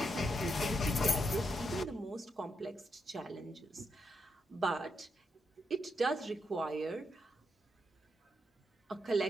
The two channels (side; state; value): both; normal; correlation 0.82